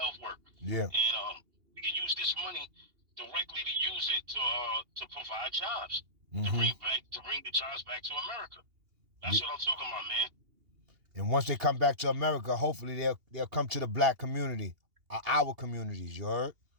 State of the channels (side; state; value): left; late; 2.8 ms